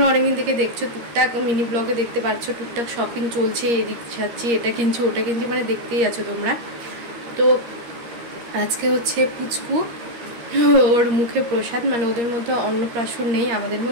অনেকদিন থেকে দেখছো, টুকটাক মিনি ব্লগে দেখতে পাচ্ছ, টুকটাক শপিং চলছে, এদিক যাচ্ছি, এটা কিনছি ওটা কিনছি, মানে দেখতেই আছো তোমরা। তো আজকে হচ্ছে পুচকু, ওর মুখে প্রসাদ, মানে ওদের মধ্যে অন্নপ্রাশন নেই, আমাদের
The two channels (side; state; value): left; late; 13 ms